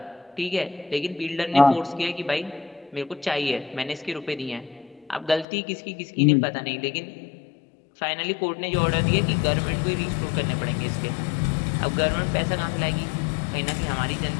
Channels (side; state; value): right; drops out; at 5.5 s